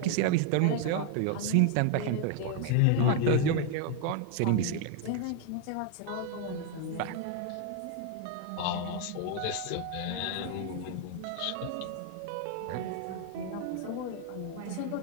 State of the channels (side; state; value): both; different; correlation 0.00